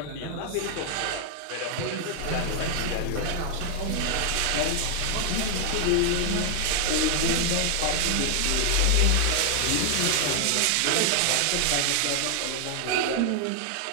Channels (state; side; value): different; both; correlation 0.00